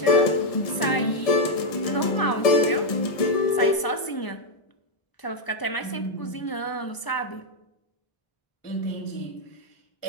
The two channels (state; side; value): late; right; 1.0 ms